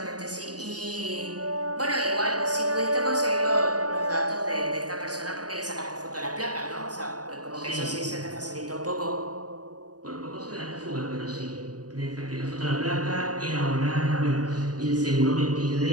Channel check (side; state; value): left; late; 0.68 ms